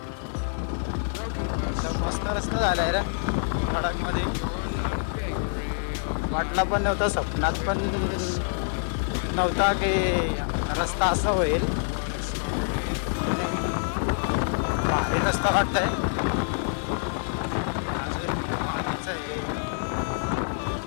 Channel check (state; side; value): silent; right; digital silence